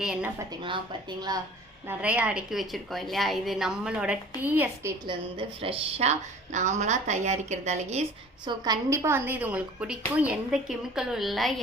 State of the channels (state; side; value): normal; both; correlation 0.46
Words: என்ன பார்த்தீங்களா நிறையா அடுக்கி வச்சுருக்கோம் இல்லையா? இது நம்மளோட டீ எஸ்டேட்லேருந்து ஃப்ரெஷ்ஷாக நாமளாக தயாரிக்கிறது அழகீஸ். ஸோ கண்டிப்பாக இது உங்களுக்கு பிடிக்கும். எந்த கெமிக்கலும் இல்லை,